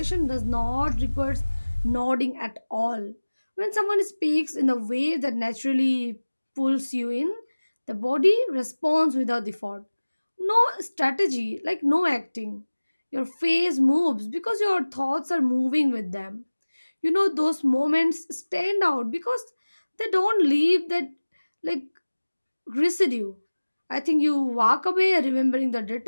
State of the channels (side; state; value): both; inverted; correlation -1.00